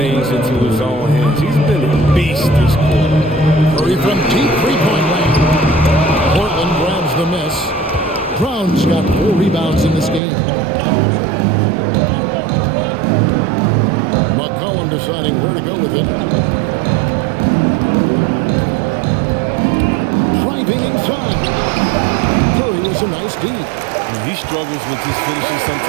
into his own hands. He's been a beast this quarter. Curry from deep three-point range. Portland grabs the miss. Brown's got 4 rebounds in this game. McCollum deciding where to go with it. Driving inside. Curry was a nice D. He struggles with his finishing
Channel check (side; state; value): left; drops out; at 10.2 s